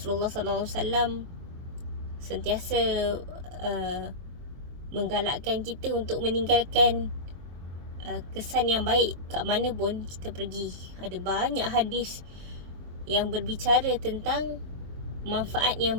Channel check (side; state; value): left; late; 23 ms